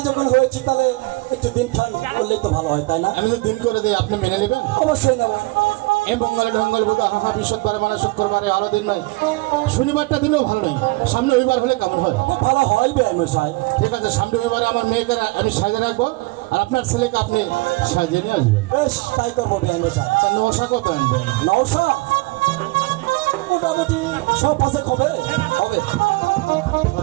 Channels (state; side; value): quieter; left; 23.4 dB